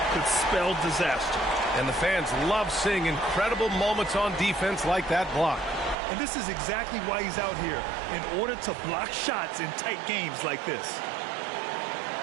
could spell disaster. And the fans love seeing incredible moments on defense like that block. And this is exactly why he's out here, in order to block shots in tight games like this.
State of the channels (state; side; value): drops out; left; at 6.0 s